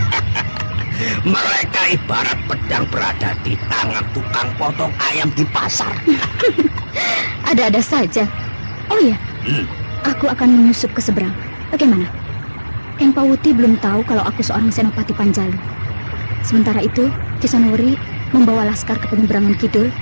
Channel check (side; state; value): both; inverted; correlation -1.00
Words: Mereka ibarat pedang berada di tangan tukang potong ayam di pasar. Ada-ada saja. Oh iya, aku akan menyusup ke seberang. Bagaimana? Eng Pawuti belum tahu kalau aku seorang senopati Panjalu. Sementara itu, Kisonowori membawa laskar ke penyeberangan kidul